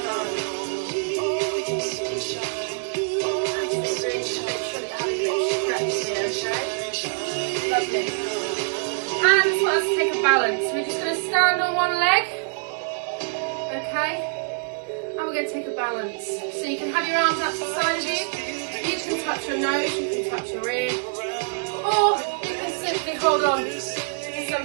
done. Make sure that you're having a bit of stretch here, okay? Lovely. And we want to take a balance. We're just going to stand on one leg, okay? And we're going to take a balance. So you can have your arms out to the side of you. You can touch your nose, you can touch your ear, or you can simply hold on to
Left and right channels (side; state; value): left; silent; digital silence